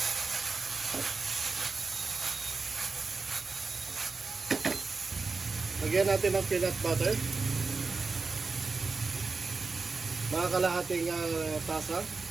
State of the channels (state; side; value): quieter; left; 4.3 dB